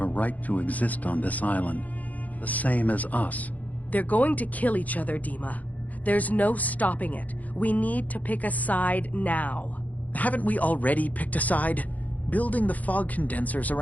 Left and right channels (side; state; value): right; late; 0.077 ms